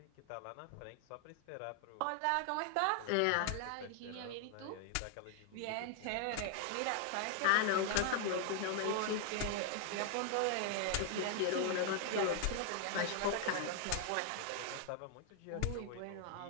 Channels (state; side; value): different; both; correlation 0.00